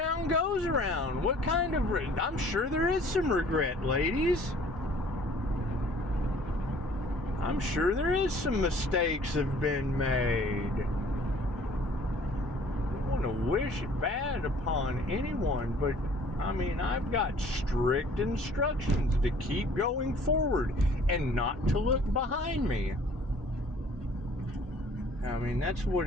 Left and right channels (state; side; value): normal; both; correlation 0.54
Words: goes around. What kind of... I'm sure there is some regret, ladies. I'm sure there is some mistakes have been made. I don't want to wish it bad upon anyone, but I mean, I've got strict instructions to keep going forward and not to look behind me. I mean, that's